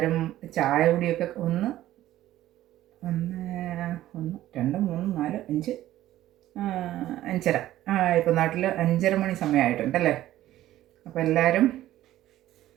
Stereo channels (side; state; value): left; quieter; 14.1 dB